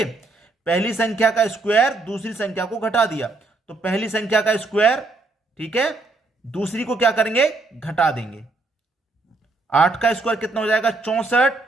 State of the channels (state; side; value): quieter; left; 3.3 dB